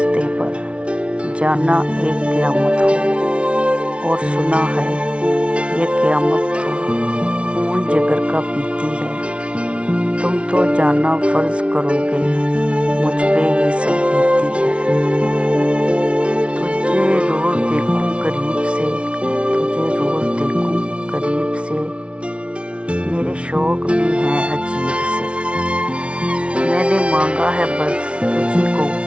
पर जाना एक क़यामत हो। और सुना है ये क़यामत तो खून जिगर का पीती है। तुम तो जाना फर्ज करोगे मुझ पे ये सब बीती है। तुझे रोज़ देखूं करीब से, तुझे रोज़ देखूं करीब से, मेरे शौक़ भी हैं अजीब से। मैंने मांगा है बस तुझी को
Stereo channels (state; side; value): late; left; 0.060 ms